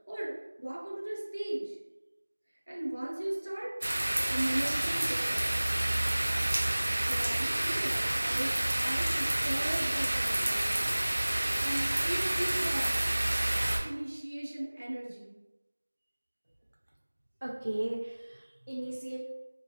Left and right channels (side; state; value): both; inverted; correlation -1.00